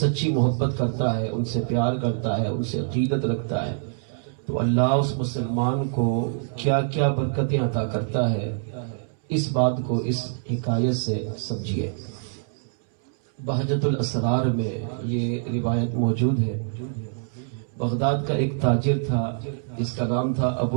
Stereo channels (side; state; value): left; silent; 62 dB below the other